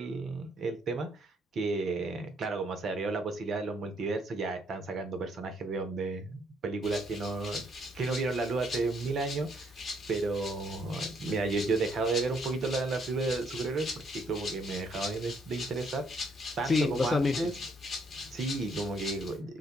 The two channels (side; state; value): both; normal; correlation 0.69